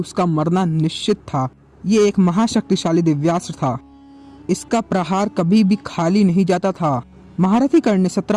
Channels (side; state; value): both; identical; correlation 1.00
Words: मरना निश्चित था। ये एक महाशक्तिशाली दिव्यास्त्र था। इसका प्रहार कभी भी खाली नहीं जाता था। महारथी कर्ण ने